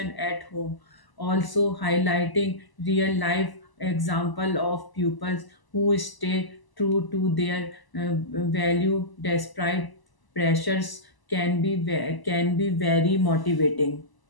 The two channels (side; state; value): right; late; 1.0 ms